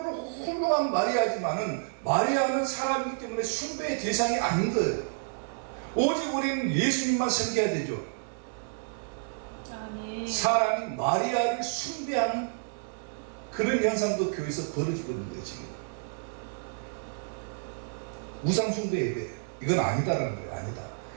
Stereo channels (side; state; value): left; silent; digital silence